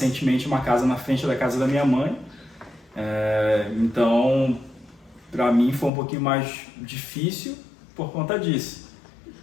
uma casa na frente da casa da minha mãe, então para mim foi um pouquinho mais difícil por conta disso.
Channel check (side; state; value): right; drops out; at 5.9 s